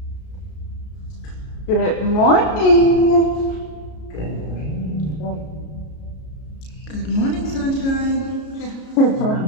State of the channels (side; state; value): right; late; 33 ms